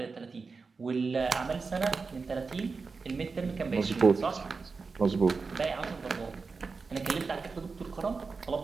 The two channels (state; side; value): quieter; left; 4.5 dB